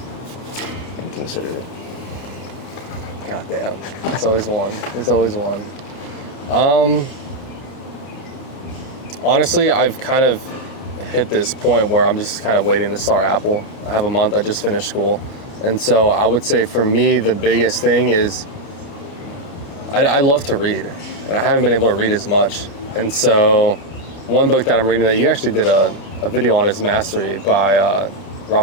And consider it. God damn. It's always one. There's always one. Honestly, I've kind of hit this point where I'm just kind of waiting to start Apple. I have a month, I just finished school. And so I would say for me, the biggest thing is I love to read, and I haven't been able to read as much. And so one book that I'm reading that you actually did a video on is Mastery by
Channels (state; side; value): late; right; 30 ms